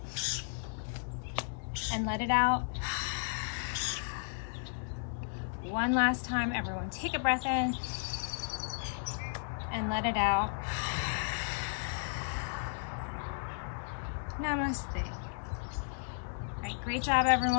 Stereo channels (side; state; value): right; silent; digital silence